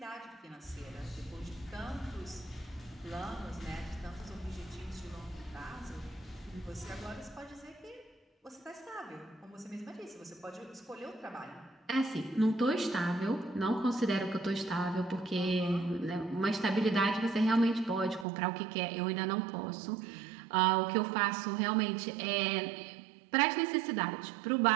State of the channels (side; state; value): left; drops out; at 18.2 s